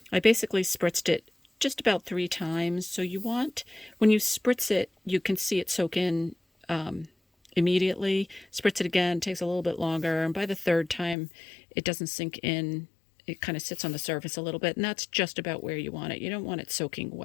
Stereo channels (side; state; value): right; drops out; at 11.2 s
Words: I basically spritzed it just about 3 times. So you want, when you spritz it, you can see it soak in immediately. Spritz it again, takes a little bit longer. And by the 3rd time, it doesn't sink in. It kind of sits on the surface a little bit. And that's just about where you want it. You don't want it soaking